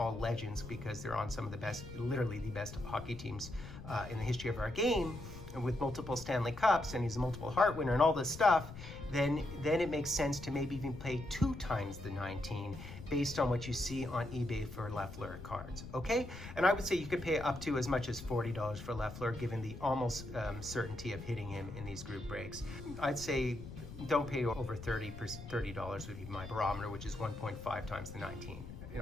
legends because they're on some of the best, literally the best hockey teams in the history of our game, and with multiple Stanley Cups, and he's a multiple Hart winner and all this stuff, then it makes sense to maybe even pay 2 times the 19 based on what you see on eBay for Lafleur cards, okay? And I would say you could pay up to as much as $40 for Lafleur, given the almost certainty of hitting him in these group breaks. I'd say don't pay over $30 would be my barometer, which is 1.5 times the 19,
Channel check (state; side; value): noise; left; rumble, 12 dB below the sound